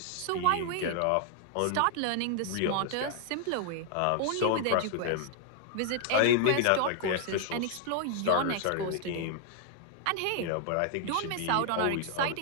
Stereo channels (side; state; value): both; different; correlation 0.00